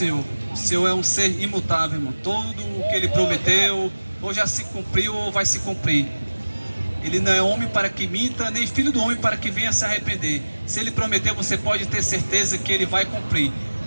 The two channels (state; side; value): inverted; both; correlation -1.00